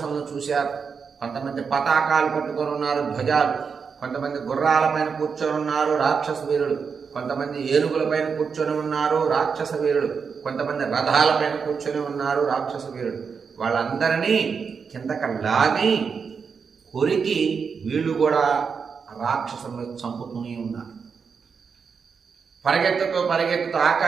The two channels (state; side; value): quieter; left; 5.9 dB